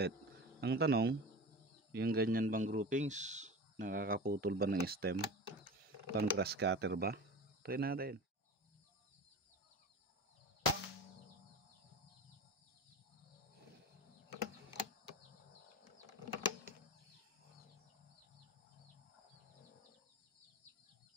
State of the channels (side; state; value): both; normal; correlation 0.32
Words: Ang tanong, yung ganyan bang groupings, nakakaputol ba ng stem? Pang grass cutter ba? Try natin.